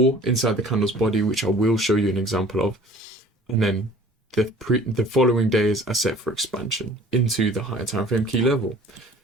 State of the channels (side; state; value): both; normal; correlation 0.49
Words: inside the candle's body, which I will show you an example of, and then the following days are set for expansion into the higher time frame key level.